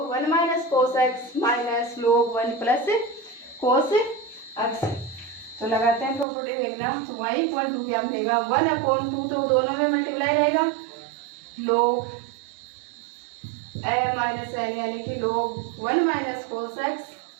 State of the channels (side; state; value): left; drops out; at 6.2 s